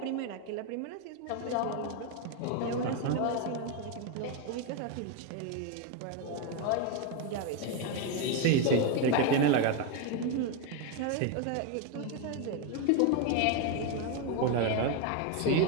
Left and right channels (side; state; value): both; different; correlation 0.02